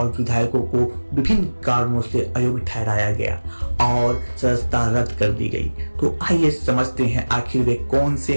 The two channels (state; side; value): inverted; both; correlation -1.00